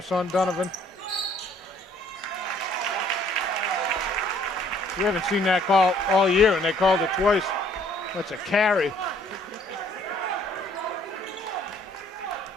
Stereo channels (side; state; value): both; normal; correlation 0.61